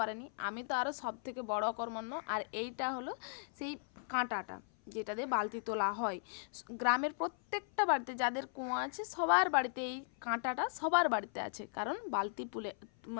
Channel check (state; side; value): silent; right; 53 dB below the other